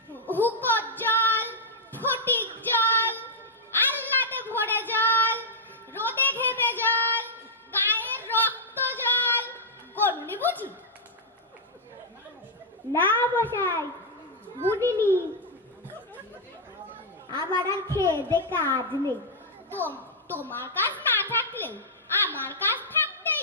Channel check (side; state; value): both; normal; correlation -0.06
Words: হুকোর জল, ফটিক জল, আহ্লাদে ভরে জল, রোদে ঘেমে জল, গায়ের রক্ত জল। গনুনি বুঝি? না মশাই, বুঝিনি। আমার আর খেয়ে দে কাজ নেই। তোমার কাজ না থাকলেও আমার কাজ থাকতেই